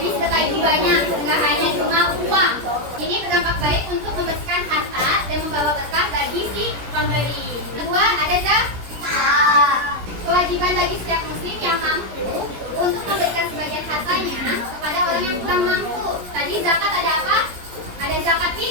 sedekah itu banyak, nggak hanya cuma uang. Ini berdampak baik untuk membersihkan harta dan membawa berkah bagi si pemberi. Kedua ada zakat. Kewajiban bagi setiap muslim yang mampu untuk memberikan sebagian hartanya kepada orang yang kurang mampu. Tadi zakat ada apa? Ada zakat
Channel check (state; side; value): late; left; 17 ms